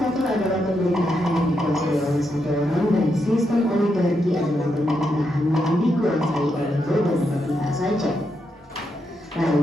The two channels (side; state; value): both; normal; correlation 0.82